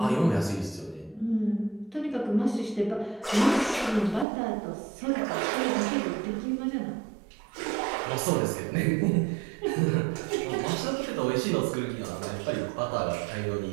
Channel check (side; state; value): left; drops out; at 4.2 s